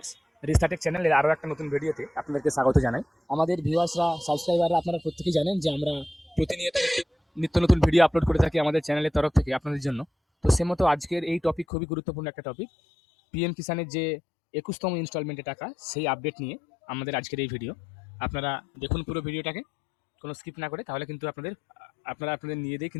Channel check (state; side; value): drops out; right; at 11.7 s